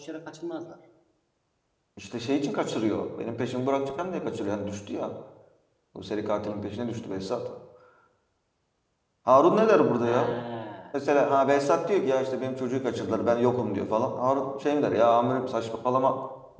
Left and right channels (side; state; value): both; identical; correlation 1.00